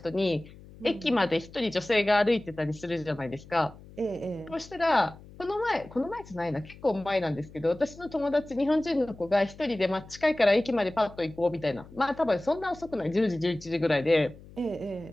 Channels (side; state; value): left; noise; hum, 20 dB below the sound